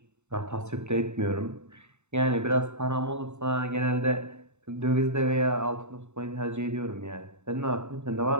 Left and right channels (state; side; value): late; left; 0.82 ms